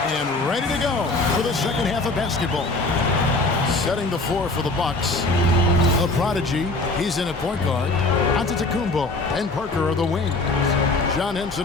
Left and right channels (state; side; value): quieter; right; 3.1 dB